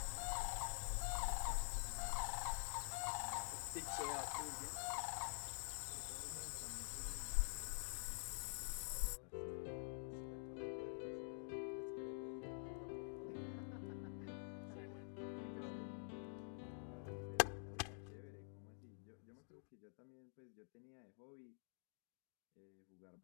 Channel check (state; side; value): silent; right; digital silence